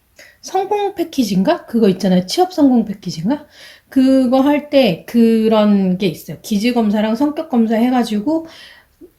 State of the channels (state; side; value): identical; both; correlation 1.00